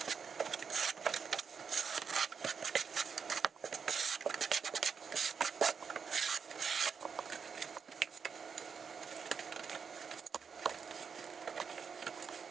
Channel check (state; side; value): quieter; left; 6.2 dB